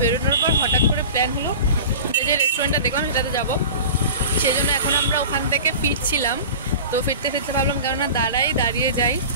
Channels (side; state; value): both; inverted; correlation -0.35